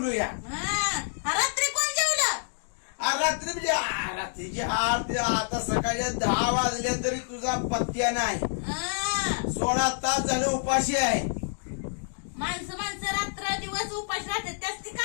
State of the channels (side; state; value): right; silent; digital silence